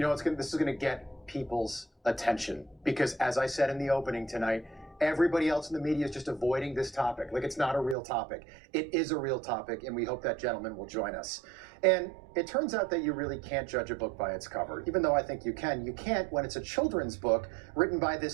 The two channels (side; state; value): left; drops out; at 8.0 s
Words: is going to get people's attention because, as I said in the opening tonight, everybody else in the media is just avoiding this topic. Like, it's not a real topic. It is a real topic, and we hope that gentleman will join us. And it turns out that you really can't judge a book by its cover, even though I think you can. You can't when it's a children's book written by